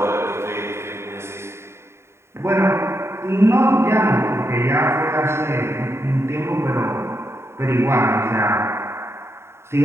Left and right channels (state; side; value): late; left; 0.13 ms